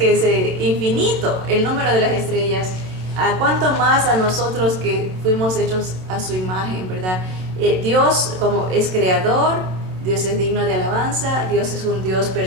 es infinito el número de las estrellas. ¿A cuánto más a nosotros que fuimos hechos a su imagen, verdad? Dios como es creador, Dios es digno de alabanza, Dios es un Dios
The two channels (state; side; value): late; left; 27 ms